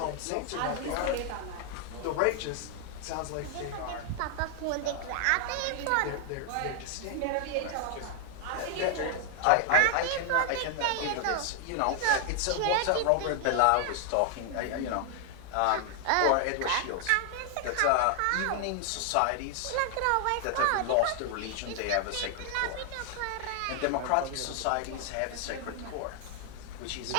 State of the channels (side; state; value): both; different; correlation 0.00